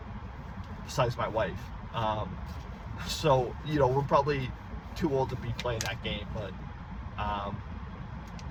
besides my wife. So, we're probably too old to be playing that game, but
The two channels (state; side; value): identical; both; correlation 1.00